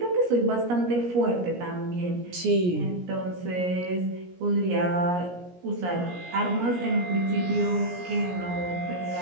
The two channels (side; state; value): left; late; 17 ms